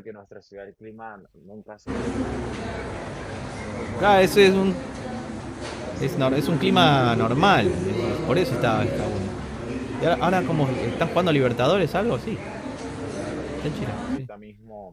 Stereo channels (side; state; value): both; identical; correlation 1.00